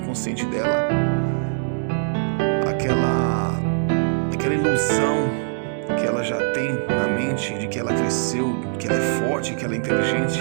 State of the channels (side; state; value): left; silent; digital silence